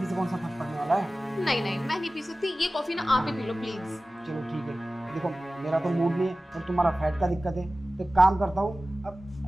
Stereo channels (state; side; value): normal; both; correlation 0.96